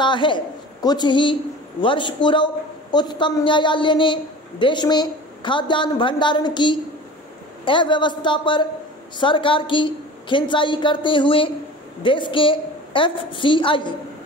है। कुछ ही वर्ष पूर्व उच्चतम न्यायालय ने देश में खाद्यान्न भंडारण की अव्यवस्था पर सरकार की खिंचाई करते हुए देश के FCI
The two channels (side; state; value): both; normal; correlation 0.38